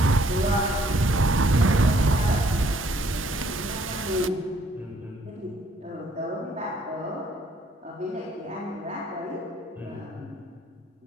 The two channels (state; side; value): normal; both; correlation 0.64